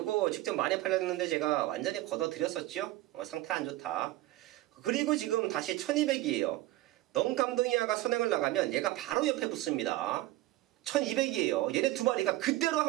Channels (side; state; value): left; quieter; 17.2 dB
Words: 직접 많이 팔렸는데 제가 완전히 걷어드렸었죠. 상태 안 좋다. 그리고 지금 다시 1200이에요 넌 감동이야가 선행을 나가면 얘가 바로 옆에 붙습니다. 1200이에요 얘네 두 마리가 그대로